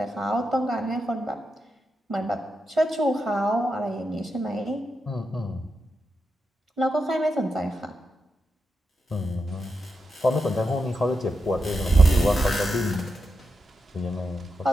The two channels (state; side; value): normal; both; correlation 0.87